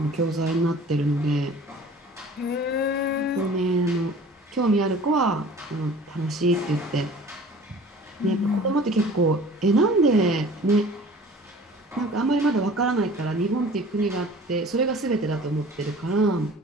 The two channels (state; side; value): normal; both; correlation 0.45